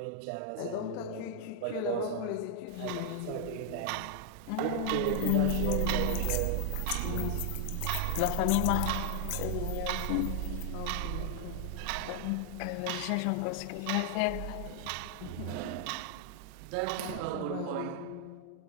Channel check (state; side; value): different; both; correlation 0.00